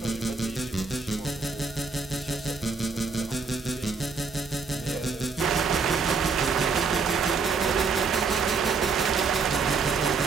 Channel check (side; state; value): left; quieter; 4.8 dB